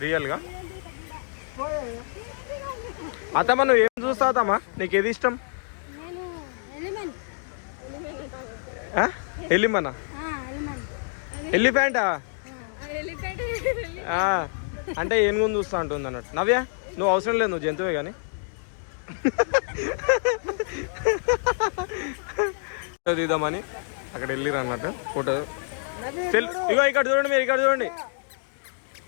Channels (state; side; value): silent; right; digital silence